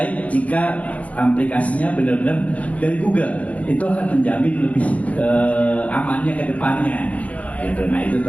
jika aplikasinya benar-benar dari Google, itu akan menjamin lebih amannya ke depannya gitu. Nah itu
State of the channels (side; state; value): right; late; 0.067 ms